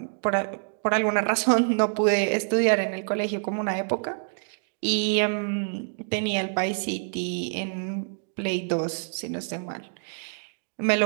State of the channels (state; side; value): silent; left; digital silence